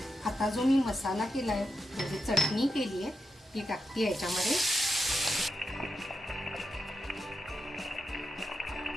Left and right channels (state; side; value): normal; both; correlation 0.86